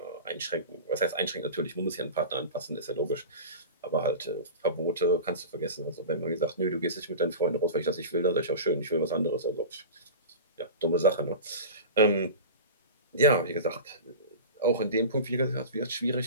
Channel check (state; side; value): inverted; both; correlation -0.31